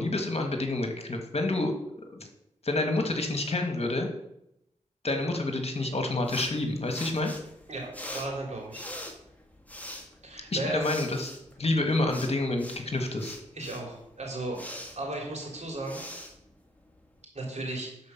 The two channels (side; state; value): both; normal; correlation 0.63